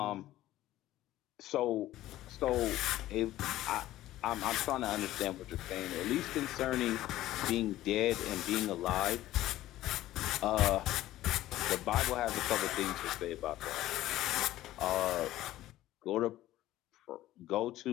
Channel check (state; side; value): quieter; right; 14.9 dB